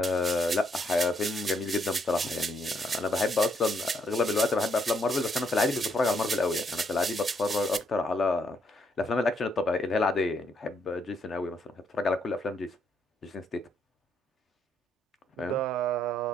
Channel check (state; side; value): normal; both; correlation 0.74